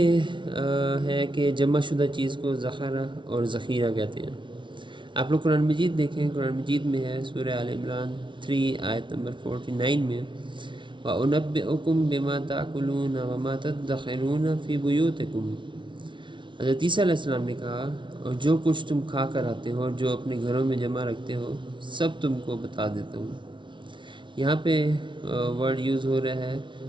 ہے کہ جمع شدہ چیز کو ذخیرہ اور ذخیرہ کہتے ہیں۔ آپ لوگ قرآن مجید دیکھیں، قرآن مجید میں ہے سورہ آل عمران 3 آیت نمبر 49 میں وَأُنَبِّئُكُم بِمَا تَأْكُلُونَ وَمَا تَدَّخِرُونَ فِي بُيُوتِكُم۔ حضرت عیسیٰ علیہ السلام نے کہا، اور جو کچھ تم کھا کر آتے ہو اور جو اپنے گھروں میں جمع رکھتے ہو سب تم کو بتا دیتا ہوں۔ یہاں پہ ورڈ یوز ہو رہا ہے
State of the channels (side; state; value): left; late; 0.24 ms